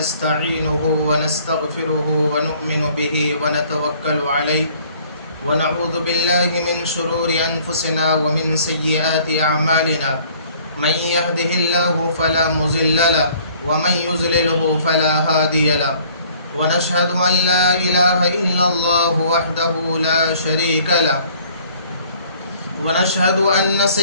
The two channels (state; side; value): inverted; both; correlation -0.57